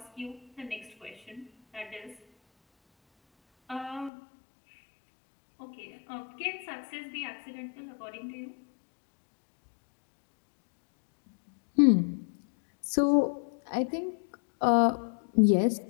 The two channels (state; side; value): drops out; right; at 4.1 s